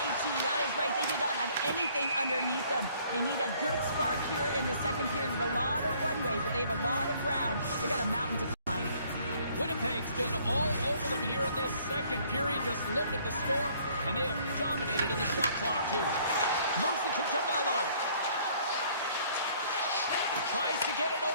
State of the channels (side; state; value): both; inverted; correlation -0.60